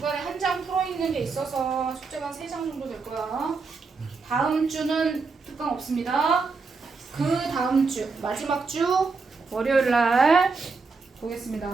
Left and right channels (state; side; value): quieter; left; 4.4 dB